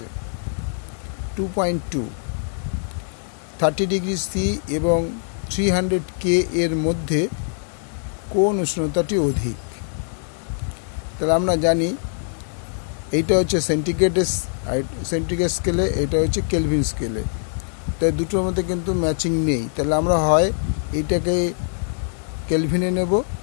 2.2 30°C এবং 300K এর মধ্যে কোন উষ্ণতাটি অধিক? তাহলে আমরা জানি এইটা হচ্ছে সেন্টিগ্রেড স্কেলে, এটা হচ্ছে কেলভিন স্কেলে। তাই দুটোর মধ্যে কিন্তু ম্যাচিং নেই। তাহলে আমরা হয় এইটাকে কেলভিনে নেব,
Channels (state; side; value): silent; right; digital silence